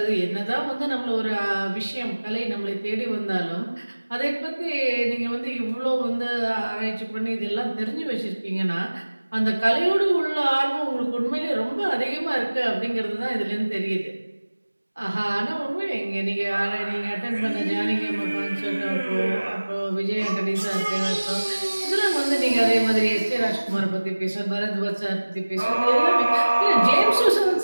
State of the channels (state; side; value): inverted; both; correlation -1.00